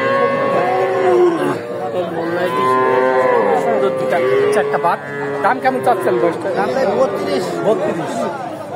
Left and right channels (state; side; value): identical; both; correlation 1.00